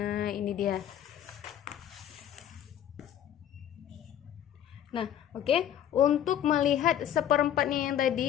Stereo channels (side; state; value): right; quieter; 10.4 dB